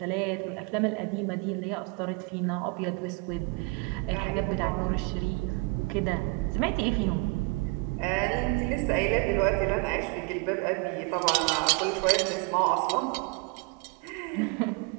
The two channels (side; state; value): left; quieter; 29.3 dB